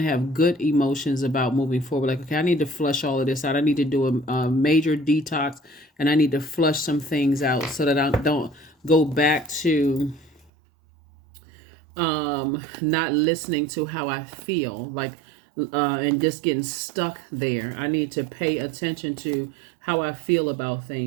have good emotions about moving forward. Like, okay, I need to flush all of this out. I need to do a major detox, and I need to flush some things out so that I don't go back to not listening to how I feel, like and just getting stuck there. I need to pay attention to how I feel about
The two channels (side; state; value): left; drops out; at 10.5 s